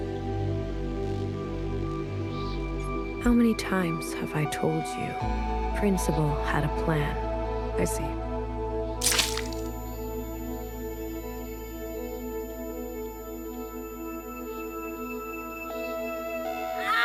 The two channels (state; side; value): identical; both; correlation 1.00